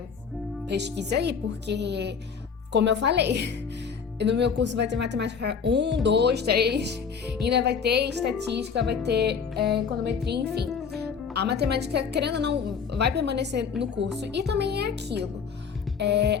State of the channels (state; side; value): quieter; right; 6.2 dB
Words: pesquisa aí, porque, como eu falei, no meu curso vai ter matemática 1, 2, 3, ainda vai ter estatística, vai ter econometria, enfim. A matemática, querendo ou não, vai permanecer no curso. E também é aquilo.